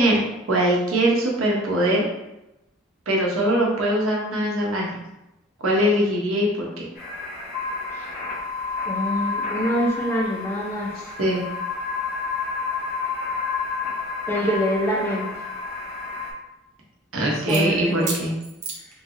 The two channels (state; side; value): normal; both; correlation 0.44